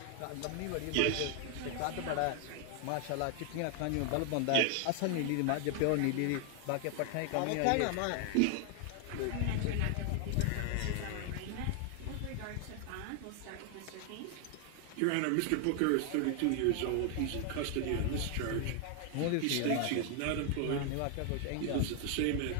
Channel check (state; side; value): different; both; correlation 0.00